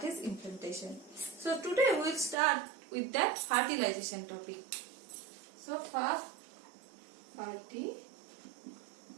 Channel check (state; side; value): drops out; left; at 2.4 s